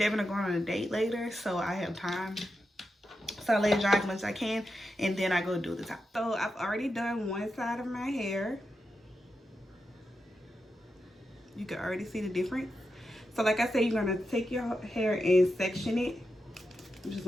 are going on a date later, so I have time. So I let it dry as much as I can, and then I go do the top. So I've already done one side of my hair. You can already see the difference. So like I said, you're gonna take your hair and section it. I'm just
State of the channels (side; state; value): both; normal; correlation 0.88